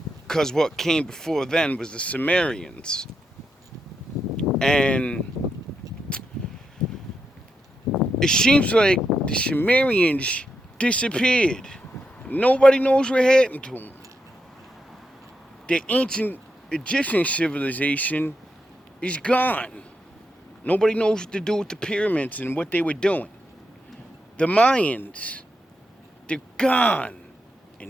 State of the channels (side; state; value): both; normal; correlation 0.84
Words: because what came before then was the Sumerians, and it seems like the Sumerians disappeared. Nobody knows what happened to them. The ancient Egyptian civilization is gone. Nobody knows what to do with the pyramids and what they were doing. The Mayans, they're gone.